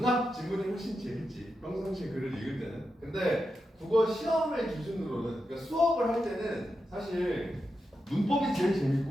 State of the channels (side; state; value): both; normal; correlation 0.88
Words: 지문이 훨씬 재밌지, 평상시에 글을 읽을 때는. 근데 국어 시험을 기준으로는, 그러니까 수업을 할 때는 사실 문법이 제일